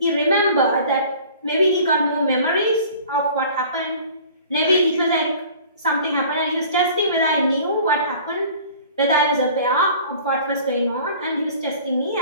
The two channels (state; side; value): inverted; both; correlation -0.47